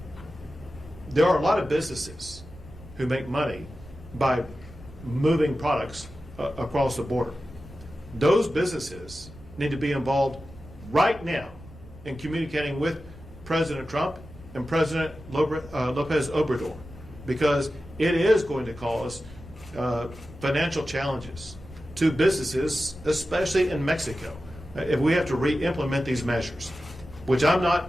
there are a lot of businesses who make money by moving products across the border. Those businesses need to be involved right now in communicating with President Trump and President Lopez Obrador, because it is going to cause financial challenges to businesses, especially in Mexico, if we have to re-implement these measures, which I'm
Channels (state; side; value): noise; right; rumble, 19 dB below the sound